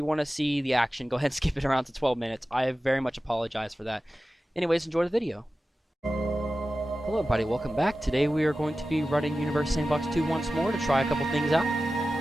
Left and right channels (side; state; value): both; normal; correlation 0.94